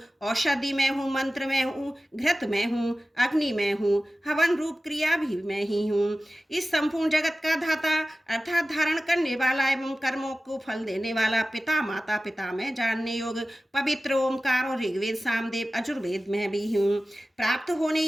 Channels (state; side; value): normal; both; correlation 0.96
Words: औषधि में हूँ, मंत्र में हूँ, घृत में हूँ, अग्नि में हूँ, हवन रूप क्रिया भी मैं ही हूँ। इस संपूर्ण जगत का धाता अर्थात धारण करने वाला एवं कर्मों को फल देने वाला पिता, माता, पिता में जानने योग पवित्र ओमकार और ऋग्वेद, सामवेद, अजुर्वेद में भी हूँ। प्राप्त होने